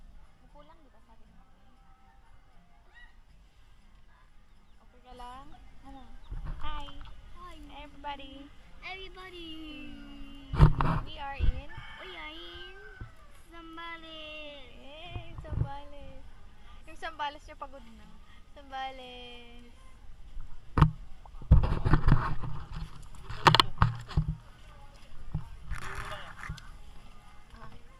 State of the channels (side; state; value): both; identical; correlation 1.00